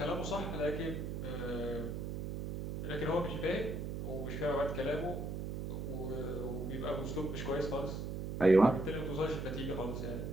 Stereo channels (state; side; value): noise; right; hum, 4 dB below the sound